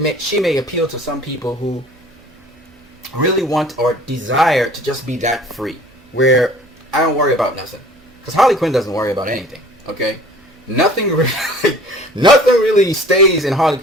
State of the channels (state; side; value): noise; right; hum, 30 dB below the sound